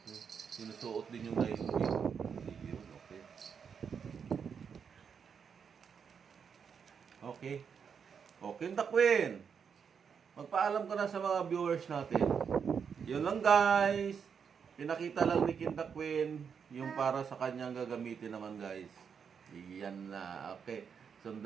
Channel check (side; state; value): left; quieter; 6.8 dB